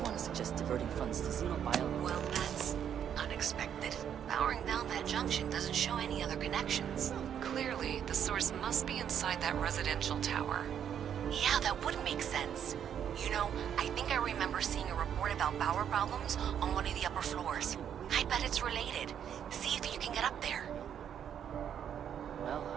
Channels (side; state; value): left; quieter; 8.9 dB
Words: to suggest diverting funds to Xenobio. Well, that's unexpected. powering down that junction doesn't show any other connections. Clearly, the source must be inside that residential tower. Yeah, that would make sense. You know, I think I remember seeing a report about power problems on one of the upper floors. I bet it's related. See if you can get up there. Well,